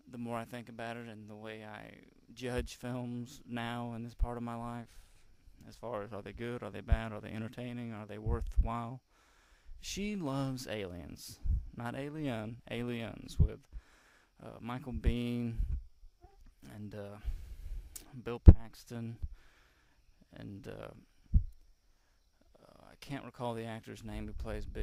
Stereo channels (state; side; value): identical; both; correlation 1.00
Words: The more I think about it and the way I judge films now in this part of my life, as far as are they good, are they bad, are they entertaining, are they worthwhile. She loves Aliens, not Alien, Aliens, with Michael Biehn and Bill Paxton, and I can't recall the actor's name who plays